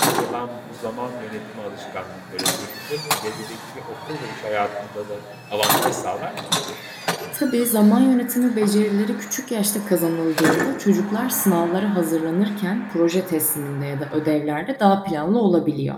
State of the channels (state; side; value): identical; both; correlation 1.00